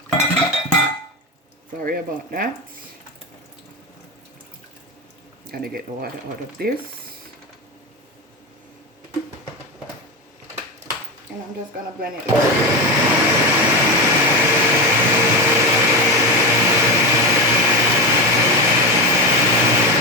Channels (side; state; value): both; normal; correlation 0.17